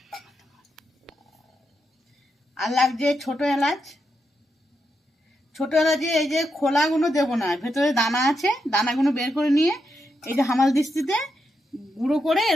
আর লাগছে ছোট এলাচ। ছোট এলাচে এই যে খোলাগুলো দেবো না, ভেতরে দানা আছে, দানাগুলো বের করে নিয়ে এই যে হামাল দিস্তিতে গুঁড়ো করে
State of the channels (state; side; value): normal; both; correlation 0.83